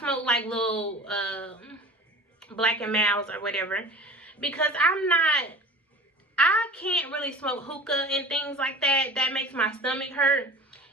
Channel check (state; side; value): normal; both; correlation 0.38